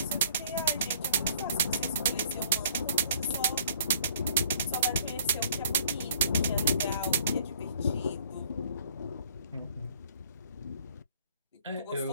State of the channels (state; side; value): inverted; both; correlation -0.58